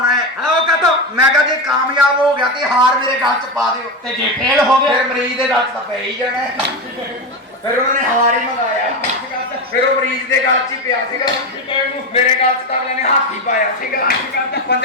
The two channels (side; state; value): both; normal; correlation 0.16